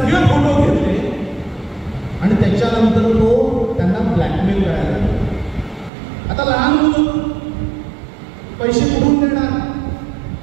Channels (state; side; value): drops out; left; at 5.9 s